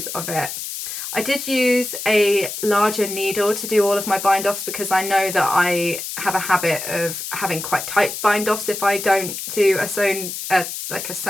of it. I did use a larger needle to do all of my bind offs because I know that I have a habit of having quite tight bind offs if I don't do a sewn, like a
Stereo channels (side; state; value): left; noise; hiss, 7 dB below the sound